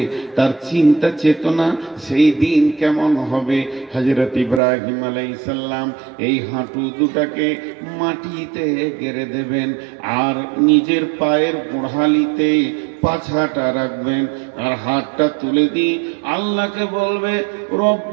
তার চিন্তা চেতনা সেই দিন কেমন হবে। হযরত ইব্রাহিম আলাইহিস সালাম এই হাঁটু দুটাকে মাটিতে গেড়ে দেবেন, আর নিজের পায়ের গোড়ালিতে পাছাটা রাখবেন, আর হাতটা তুলে দিয়ে আল্লাহকে বলবে,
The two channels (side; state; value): left; drops out; at 4.6 s